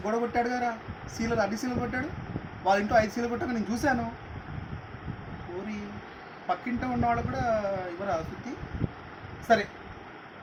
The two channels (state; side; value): identical; both; correlation 1.00